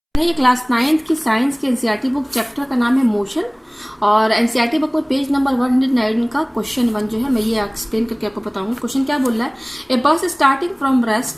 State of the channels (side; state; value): both; identical; correlation 1.00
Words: है ये class 9th की साइंस की एनसीईआरटी बुक, चैप्टर का नाम है मोशन। और एनसीईआरटी बुक में पेज नंबर 109 का क्वेश्चन 1 जो है मैं ये एक्सप्लेन करके आपको बताऊंगा। क्वेश्चन क्या बोल रहा है, a bus starting from